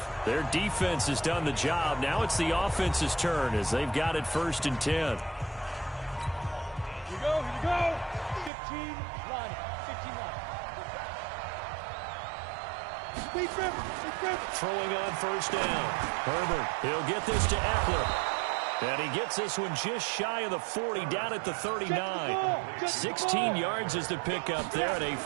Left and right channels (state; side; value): drops out; left; at 8.5 s